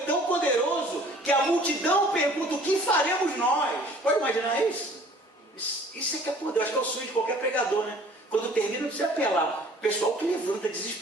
poderoso que a multidão pergunta, o que faremos nós? Pode imaginar isso? Isso é que é poder, acho que é o sonho de qualquer pregador, né? Quando termina, não precisa apelar. O pessoal que levanta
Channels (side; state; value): both; normal; correlation 0.52